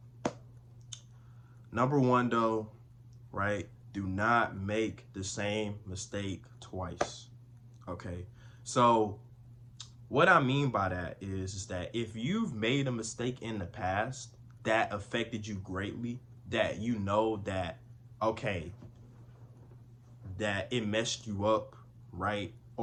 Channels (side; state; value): both; identical; correlation 1.00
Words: Number 1 though, right? Do not make the same mistake twice. Okay? So, what I mean by that is that if you've made a mistake in the past that affected you greatly, that you know that, okay, that it messed you up, right?